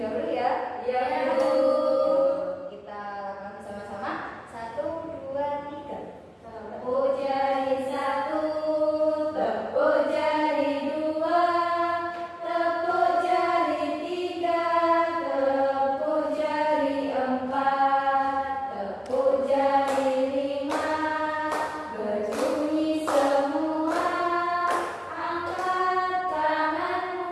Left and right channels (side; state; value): both; identical; correlation 1.00